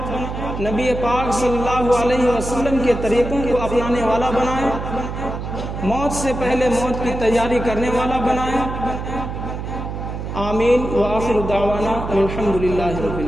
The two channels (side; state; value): right; noise; hum, 6 dB below the sound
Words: نبی پاک صلی اللہ علیہ وسلم کے طریقوں کو اپنانے والا بنائے، موت سے پہلے موت کی تیاری کرنے والا بنائے. آمین. وآخر دعوانا الحمدللہ رب